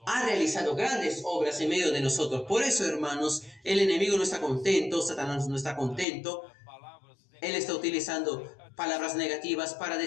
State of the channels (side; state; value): right; drops out; at 6.1 s